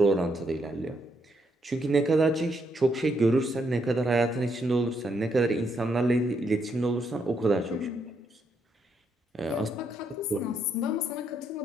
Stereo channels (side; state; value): both; normal; correlation 0.76